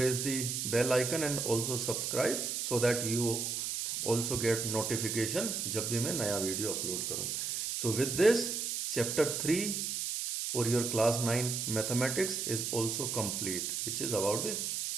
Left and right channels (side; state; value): right; noise; hiss, 2 dB below the sound